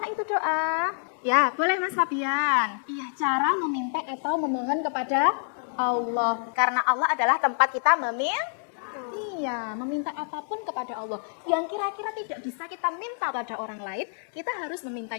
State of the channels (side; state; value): right; silent; digital silence